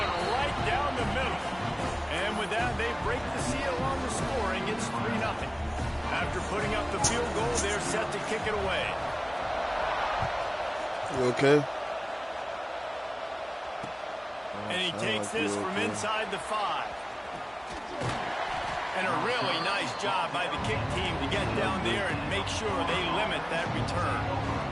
right down the middle. And with that, they break the seal on the scoring. It's 3-0. After putting up the field goal, they're set to kick it away. You okay? And he takes this from inside the 5. And a really nice job by the kick team to get down there and make sure they limit that return.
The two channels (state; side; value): identical; both; correlation 1.00